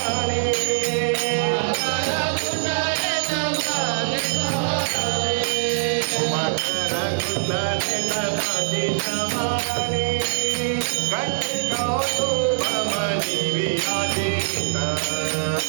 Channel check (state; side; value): silent; left; digital silence